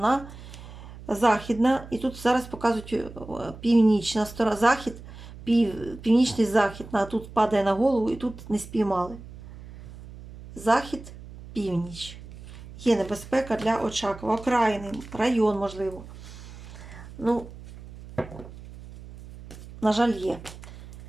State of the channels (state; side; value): noise; right; hum, 16 dB below the sound